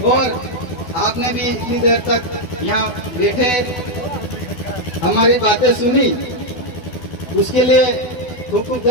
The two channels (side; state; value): right; late; 12 ms